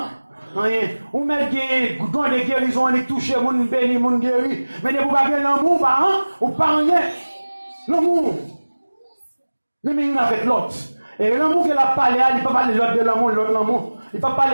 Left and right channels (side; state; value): both; inverted; correlation -1.00